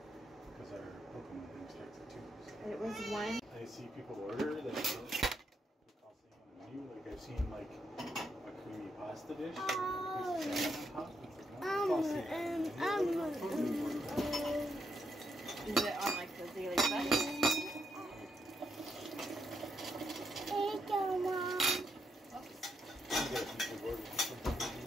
It was one. I see people order that cost on the menu. Like I've seen like a creamy pasta dish. Is it on like the daily budget?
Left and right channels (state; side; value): normal; both; correlation 0.79